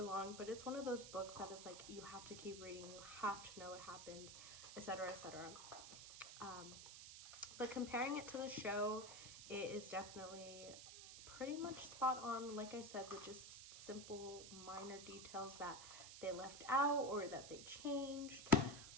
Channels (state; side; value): noise; right; hiss, 11 dB below the sound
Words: long, but it's one of those books that is like, you have to keep reading, you have to know what happens, etc., etc. But comparing it to the show, it is definitely pretty much spot on, like I said, with just simple minor details that they left out or that they changed.